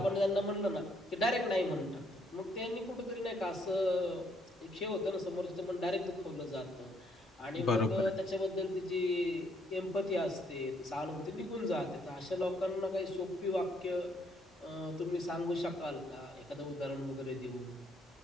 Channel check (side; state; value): both; normal; correlation 0.69